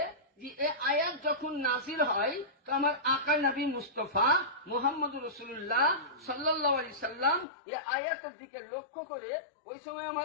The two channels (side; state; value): right; drops out; at 7.5 s